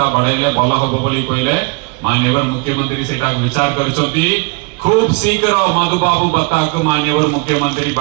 बढ़ाइले भला होबो बोली कहिले माननीय मुख्यमंत्री सेटा विचार करछंती खूब शीघ्र मधुबाबू भत्ता को माननीय मुख्यमंत्री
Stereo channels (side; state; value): left; quieter; 31.1 dB